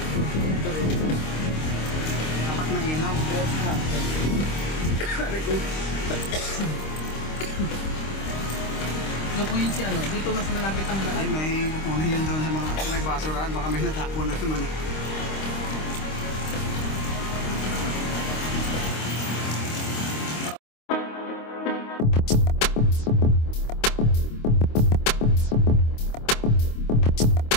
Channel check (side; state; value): right; late; 26 ms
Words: Dapat may ilaw. Ano po yun si ano? Dito mas malapit ang Ay, daan. may pupunin yun doon sa mga may basurahan. Baka may natapon na naman.